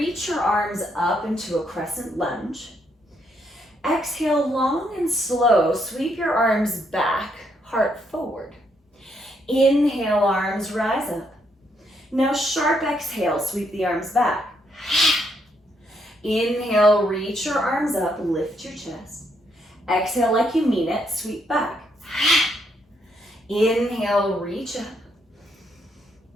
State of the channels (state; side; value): normal; both; correlation 0.74